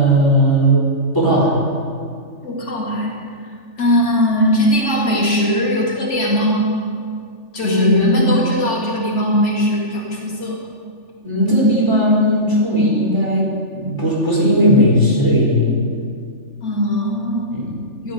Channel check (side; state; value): right; late; 3.4 ms